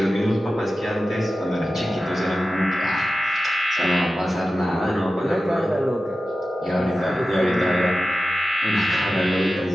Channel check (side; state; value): both; normal; correlation 0.93